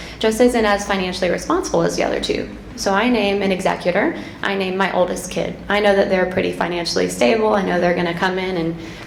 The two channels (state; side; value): identical; both; correlation 1.00